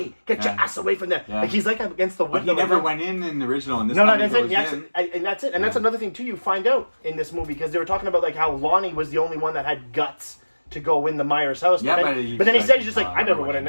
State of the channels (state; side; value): inverted; both; correlation -1.00